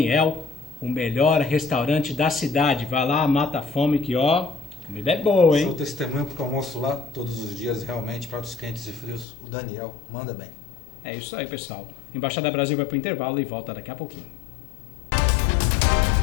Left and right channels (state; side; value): drops out; right; at 9.2 s